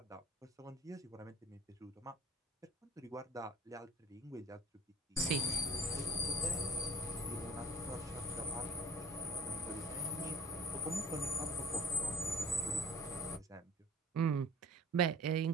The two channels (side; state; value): both; normal; correlation 0.42